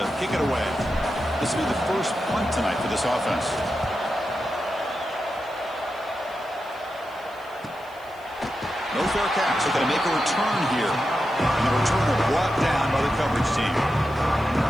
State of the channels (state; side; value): noise; left; hiss, 27 dB below the sound